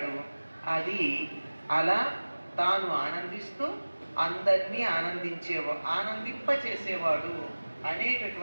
అది అలా తాను ఆనందిస్తూ అందరినీ ఆనందింపచేసేవాడు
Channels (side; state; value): both; inverted; correlation -1.00